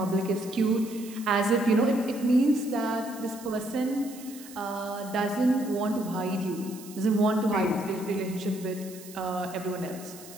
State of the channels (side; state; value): right; noise; hiss, 17 dB below the sound